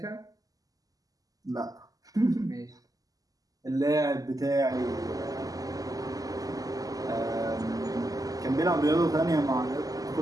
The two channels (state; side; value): late; left; 0.17 ms